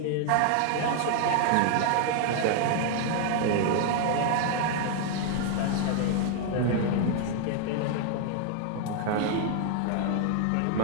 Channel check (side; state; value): both; different; correlation 0.00